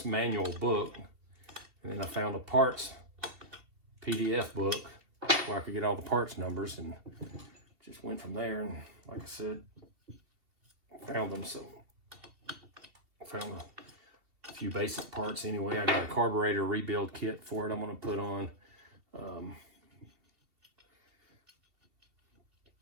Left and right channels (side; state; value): left; late; 2.7 ms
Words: manual book, and then I found a parts PDF book where I could get all the parts numbers, and just went from there. And like I said, found them. So I found a few basic parts anyway. I got a carburetor rebuild kit for it I'm going to put on.